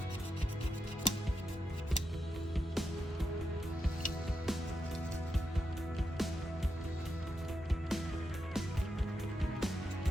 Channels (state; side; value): normal; both; correlation 0.85